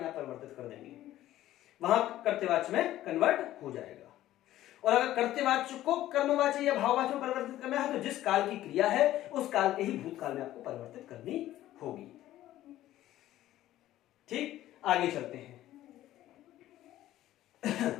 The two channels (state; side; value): quieter; right; 14.1 dB